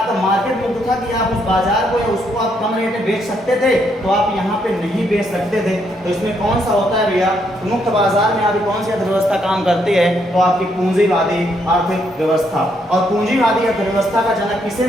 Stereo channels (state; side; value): normal; both; correlation 0.74